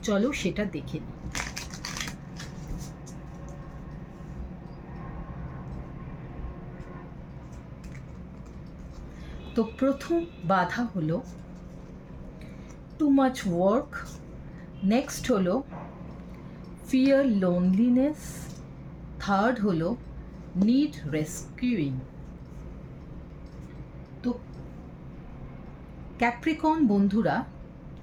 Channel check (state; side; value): identical; both; correlation 1.00